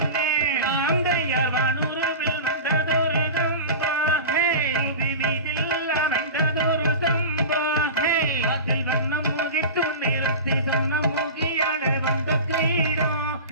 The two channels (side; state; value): both; inverted; correlation -0.30